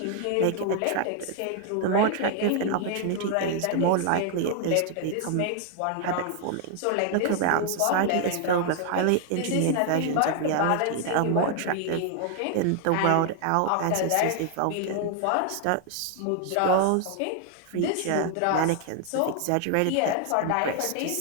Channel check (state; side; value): different; both; correlation 0.00